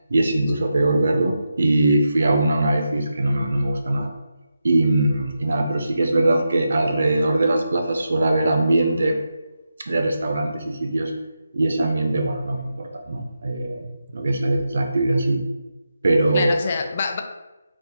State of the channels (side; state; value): both; inverted; correlation -0.87